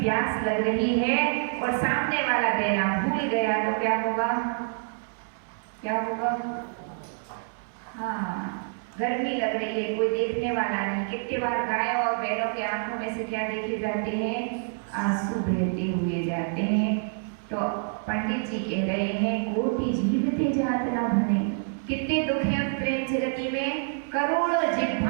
प्यास लग रही है और सामने वाला देना भूल गया तो क्या होगा? क्या होगा? हाँ, गर्मी लग रही है, कोई देखने वाला नहीं। कितने बार गाय और बैलों के आंखों में से क्या देखे जाते हैं? आंसू बहते हुए जाते हैं। तो पंडित जी कह रहे हैं कोटि जीवते जात न भने। कितने दुख हैं उस प्रेम जगती में। करोड़ों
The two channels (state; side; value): silent; left; 60 dB below the other